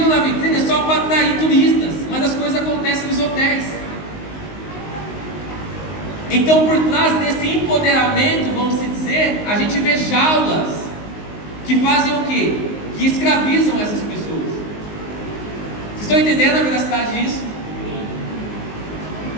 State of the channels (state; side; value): late; right; 19 ms